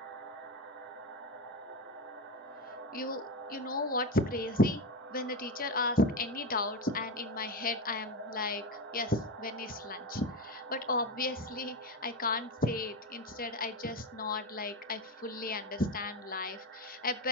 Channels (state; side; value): normal; both; correlation 0.16